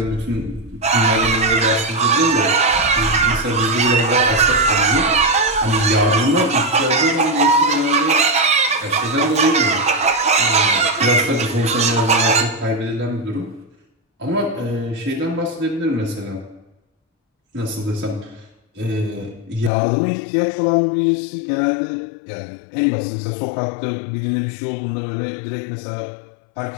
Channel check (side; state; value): right; drops out; at 19.7 s